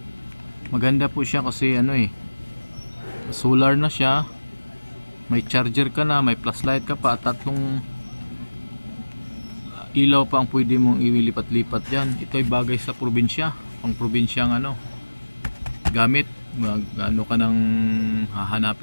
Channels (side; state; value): both; inverted; correlation -1.00